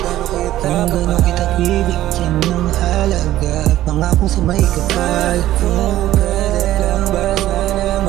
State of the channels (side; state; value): left; quieter; 14.1 dB